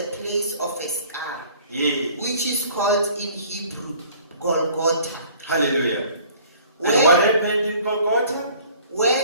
place of a skull, yes. which is called in Hebrew Golgotha. Hallelujah. And what happened in Golgotha?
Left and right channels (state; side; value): inverted; both; correlation -0.52